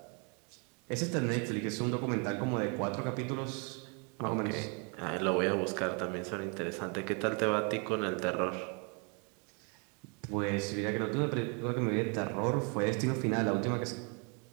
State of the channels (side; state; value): left; quieter; 35.6 dB